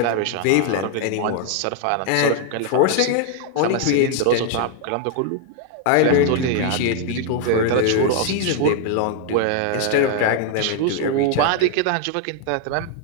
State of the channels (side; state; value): both; different; correlation 0.00